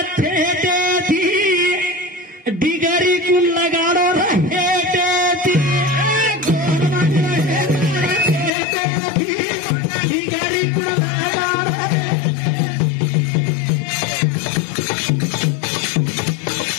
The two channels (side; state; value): right; drops out; at 8.5 s